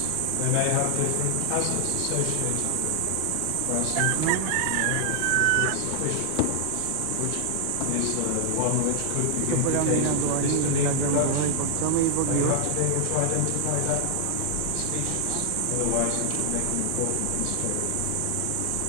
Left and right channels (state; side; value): different; both; correlation 0.00